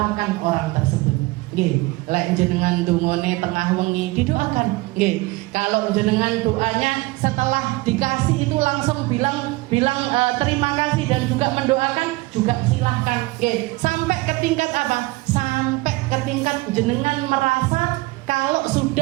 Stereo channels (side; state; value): left; quieter; 21.7 dB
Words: orang tersebut. Lek jenengan dungone tengah wengi didoakan. Kalau jenengan doanya setelah dikasih itu langsung bilang terima kasih dan juga mendoakan, juga silahkan. Sampai ke tingkat apa? Sampai ke tingkat jenengan merasa kalau